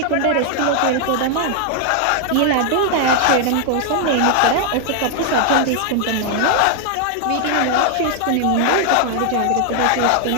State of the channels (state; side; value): different; both; correlation 0.00